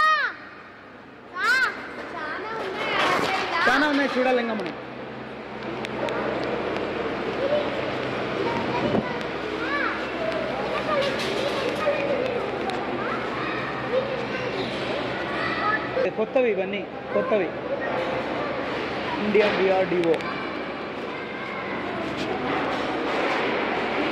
చాలా ఉన్నాయి చూడాలి ఇంకా మనం. కొత్తవి, ఇవన్నీ కొత్తవి. Indian DRDO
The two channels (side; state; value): both; identical; correlation 1.00